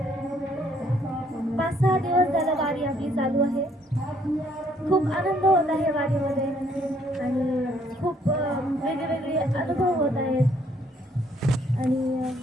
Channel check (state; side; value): normal; both; correlation 0.67